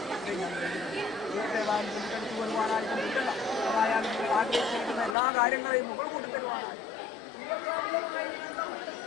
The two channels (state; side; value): drops out; right; at 5.2 s